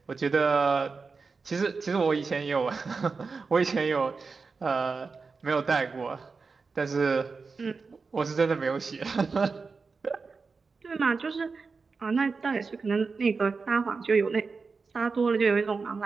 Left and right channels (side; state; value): left; quieter; 4.6 dB